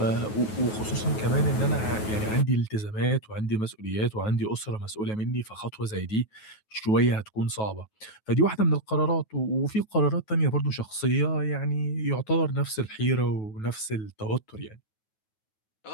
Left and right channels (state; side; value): late; right; 9.3 ms